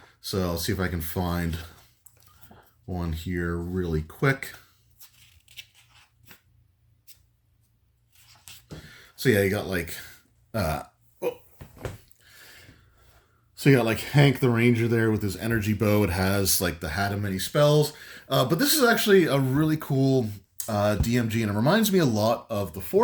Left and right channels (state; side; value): identical; both; correlation 1.00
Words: So I'll see if I can find one here really quick. So yeah, you got like so you got like Hank the Ranger there with his energy bow. It has like the hat of many spells. But this is actually a really cool DMG, and it reminds me a lot of the